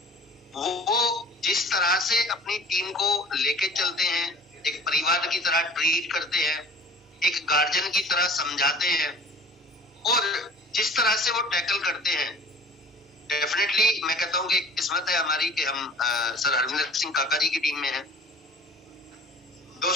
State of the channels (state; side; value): normal; both; correlation 0.45